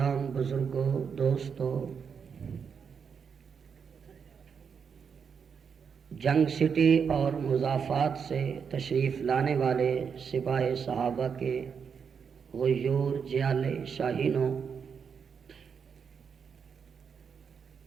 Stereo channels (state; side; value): quieter; left; 6.5 dB